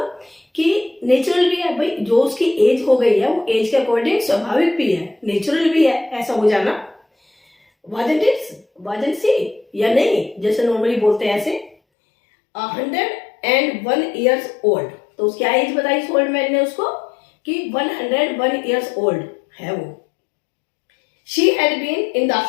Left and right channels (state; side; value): drops out; right; at 11.8 s